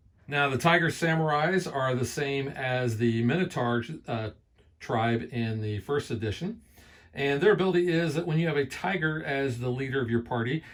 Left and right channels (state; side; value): identical; both; correlation 1.00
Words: Now, the Tiger Samurais are the same as the Minotaur tribe in the first edition. And their ability is that when you have a tiger as the leader of your party,